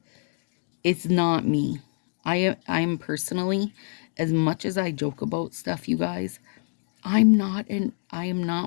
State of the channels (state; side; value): silent; right; digital silence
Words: it's not me. I'm personally, as much as I joke about stuff, you guys, I am not